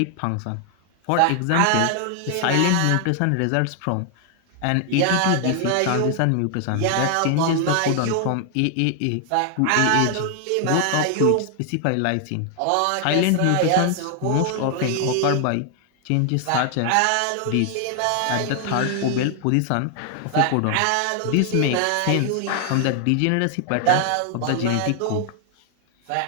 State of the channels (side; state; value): both; different; correlation 0.00